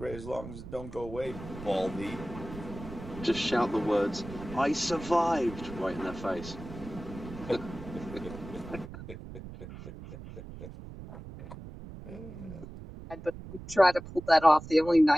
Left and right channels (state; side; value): noise; right; rumble, 13 dB below the sound